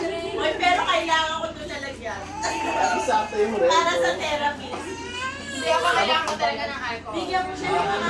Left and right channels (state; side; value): identical; both; correlation 1.00